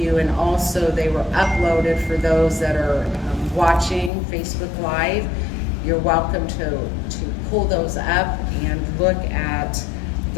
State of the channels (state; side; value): drops out; right; at 4.1 s